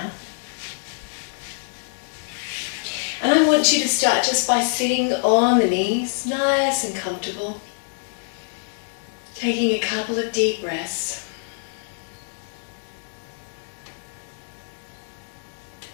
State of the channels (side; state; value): right; silent; 62 dB below the other